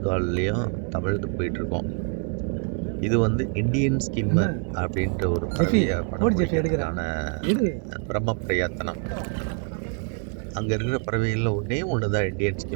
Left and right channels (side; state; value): left; quieter; 39.2 dB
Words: கால்லையும் தவழ்ந்து போயிட்டுருக்கோம். இது இண்டியன் ஸ்கிம்மர் அப்படின்ற ஒரு பறவையை படம் பிடிக்கிறதுக்கான பிரம்ம பிரயத்தனம். அங்கே இருக்கிற பறவைகளில் ஒன்று தான் இண்டியன்